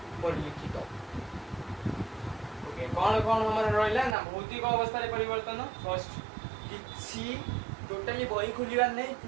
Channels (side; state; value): left; drops out; at 4.2 s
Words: परिलिखित। ओके कौन कौन हमारे रहा ना भौतिक अवस्था परिवर्तन फर्स्ट किसी टोटाली बही खोलिबार नहीं